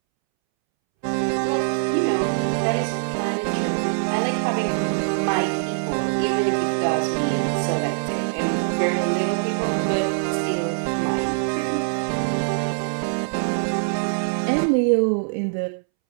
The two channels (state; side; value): silent; left; 63 dB below the other